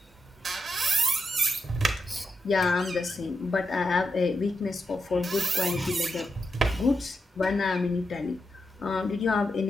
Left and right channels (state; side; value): normal; both; correlation 0.85